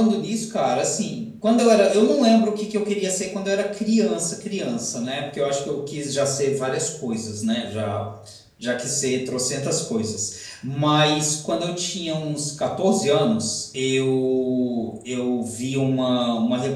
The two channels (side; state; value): both; identical; correlation 1.00